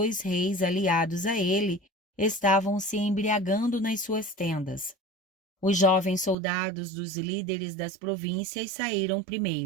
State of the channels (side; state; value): left; drops out; at 6.4 s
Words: reis aliados a ele estavam se embriagando nas suas tendas. Os jovens soldados dos líderes das províncias saíram